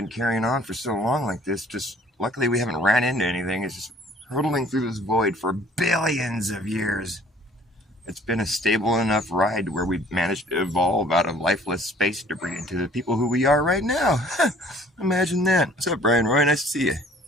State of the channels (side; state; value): both; normal; correlation 0.55